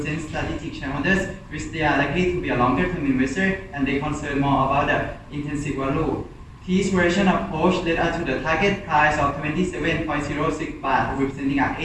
strategic shareholders, which they are likely to be a longer-term investor and they concern more about the intrinsic value. This version approach led us to the target price of 27.06 baht, representing an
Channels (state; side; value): identical; both; correlation 1.00